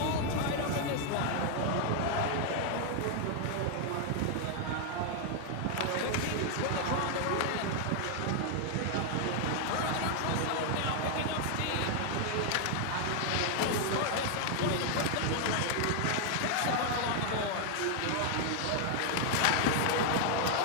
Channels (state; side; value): different; both; correlation 0.00